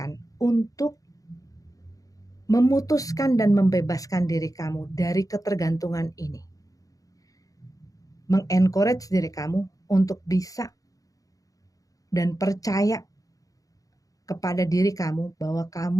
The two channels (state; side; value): late; right; 0.17 ms